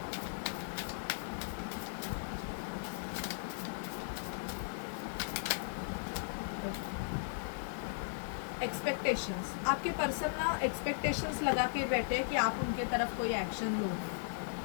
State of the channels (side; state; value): right; silent; digital silence